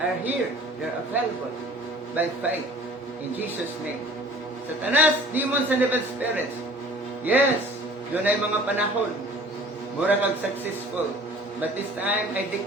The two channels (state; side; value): normal; both; correlation 0.48